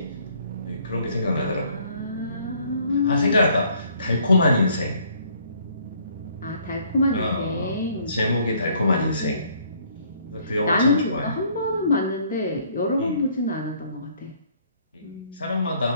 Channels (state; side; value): inverted; both; correlation -0.62